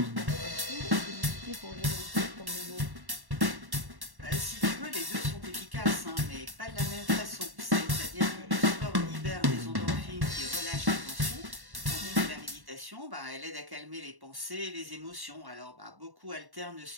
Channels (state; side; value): late; left; 1.1 ms